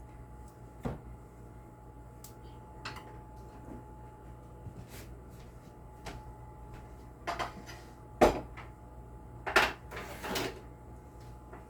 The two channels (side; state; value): both; identical; correlation 1.00